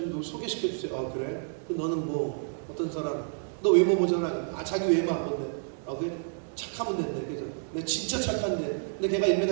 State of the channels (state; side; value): silent; left; digital silence